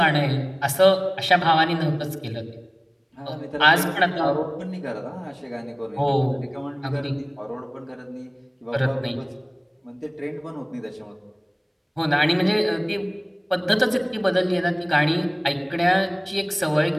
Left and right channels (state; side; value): identical; both; correlation 1.00